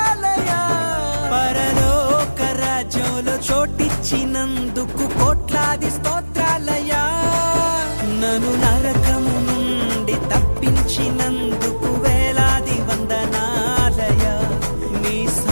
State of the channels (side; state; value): both; inverted; correlation -1.00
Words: పరలోక రాజ్యంలో చోటిచ్చినందుకు కోట్లాది స్తోత్రాలయ్యా. నన్ను నరకము నుండి తప్పించినందుకు వేలాది వందనాలయ్యా. నీ